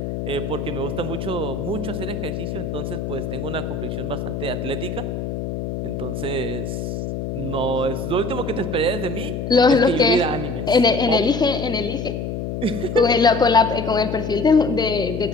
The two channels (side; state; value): left; noise; hum, 4 dB below the sound